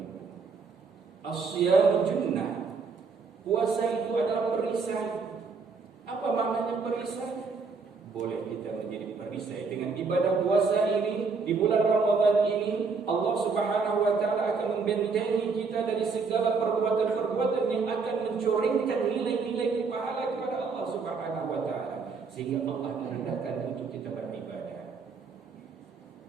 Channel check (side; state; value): left; quieter; 4.8 dB